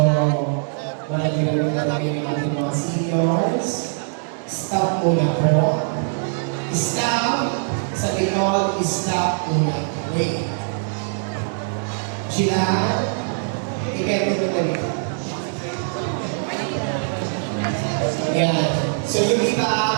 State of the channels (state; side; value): silent; left; digital silence